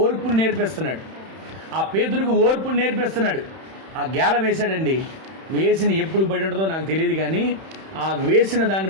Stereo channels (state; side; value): late; left; 31 ms